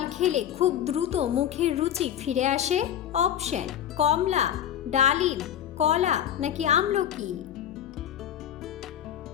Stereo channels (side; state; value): right; quieter; 10.3 dB